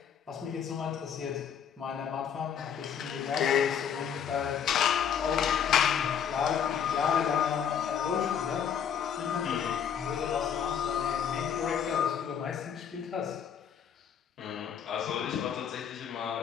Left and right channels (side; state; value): right; quieter; 8.1 dB